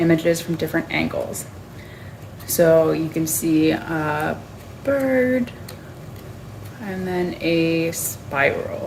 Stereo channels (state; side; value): identical; both; correlation 1.00